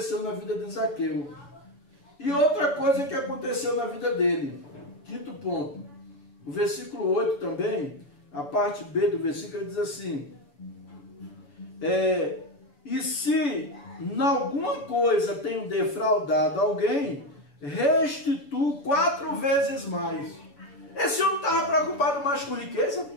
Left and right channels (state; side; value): late; right; 7.0 ms